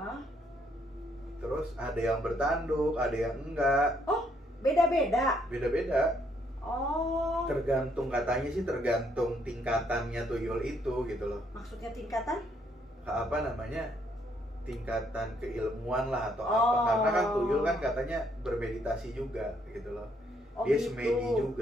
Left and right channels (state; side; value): normal; both; correlation 0.71